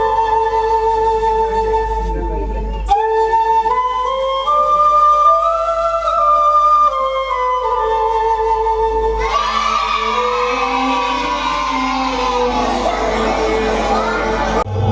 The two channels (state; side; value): identical; both; correlation 1.00